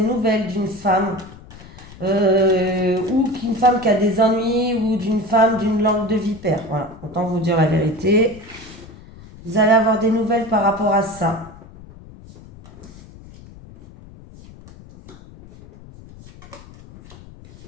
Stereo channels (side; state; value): left; noise; rumble, 20 dB below the sound